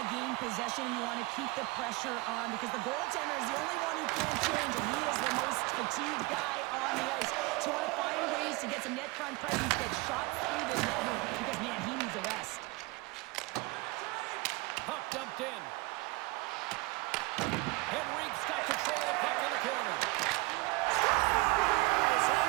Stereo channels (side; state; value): left; quieter; 23.7 dB